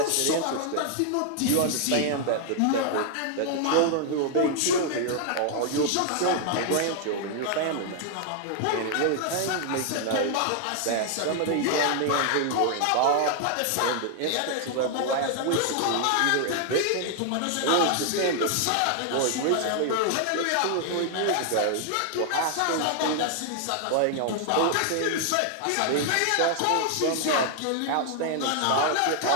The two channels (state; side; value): different; both; correlation 0.00